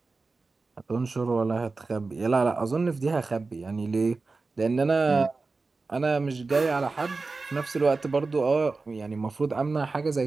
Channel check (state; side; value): quieter; left; 3.9 dB